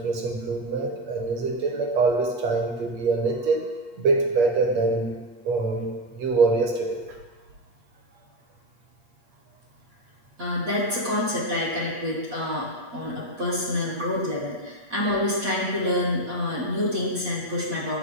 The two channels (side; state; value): left; late; 8.4 ms